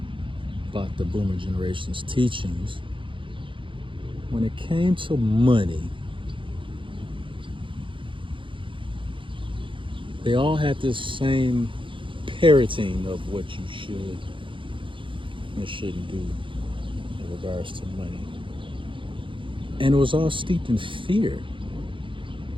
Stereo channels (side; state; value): left; late; 0.25 ms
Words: about the boomer generation's teachings, when it came to money, they all had this same parroting of what you should and shouldn't do in regards to money. And it was all steeped in fear.